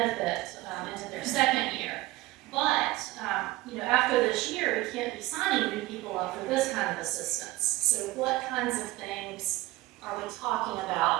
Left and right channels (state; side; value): quieter; left; 18.6 dB